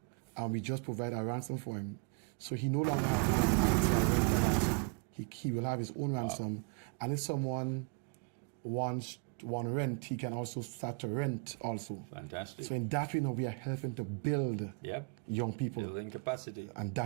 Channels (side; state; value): left; quieter; 34.2 dB